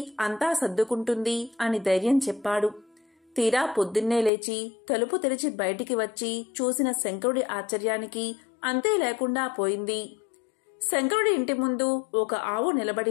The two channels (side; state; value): right; drops out; at 4.3 s